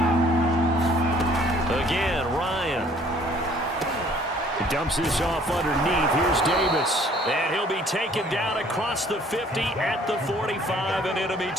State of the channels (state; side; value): normal; both; correlation 0.57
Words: Again, Ryan. He dumps this off underneath. Here's Davis. And he'll be taken down across the 50 at the 45 in enemy